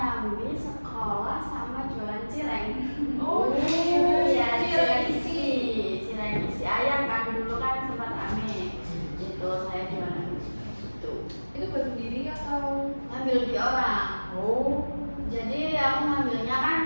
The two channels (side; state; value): both; inverted; correlation -1.00